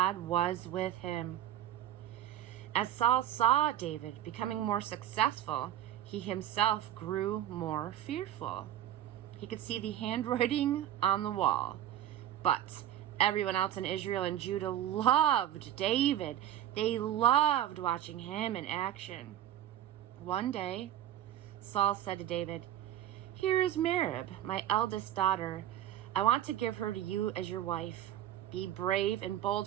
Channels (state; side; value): quieter; left; 11.9 dB